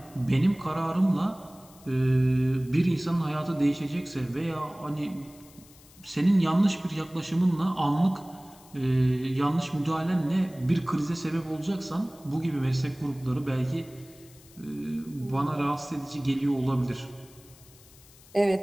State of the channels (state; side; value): noise; left; hiss, 24 dB below the sound